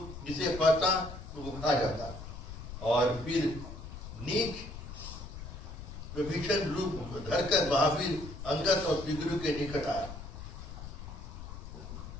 जिसे पाता तो वो खा जाता। और फिर नीच विभीषण रूप धरकर महावीर अंगद और सुग्रीव के निकट आया।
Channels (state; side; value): noise; left; rumble, 11 dB below the sound